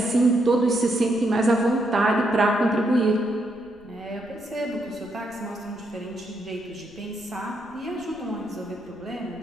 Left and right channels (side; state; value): right; noise; rumble, 28 dB below the sound